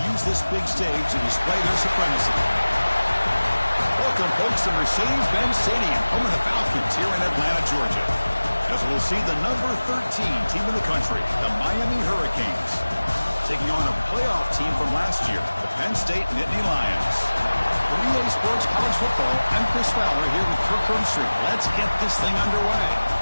use this big stage to display their supremacy. Welcome, folks, to Mercedes-Benz Stadium, home of the Falcons here in Atlanta, Georgia. As we'll see the number 13 team in the country, the Miami Hurricanes, taking on a playoff team from last year, the Penn State Nittany Lions. For EA Sports College Football, I'm Chris Fowler here with Kirk Herbstreit. Let's get this thing underway.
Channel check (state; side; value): inverted; both; correlation -1.00